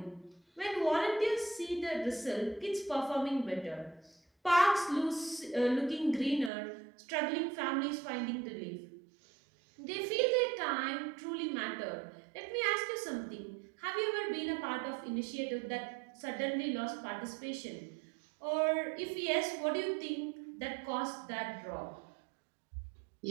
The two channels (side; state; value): left; drops out; at 6.5 s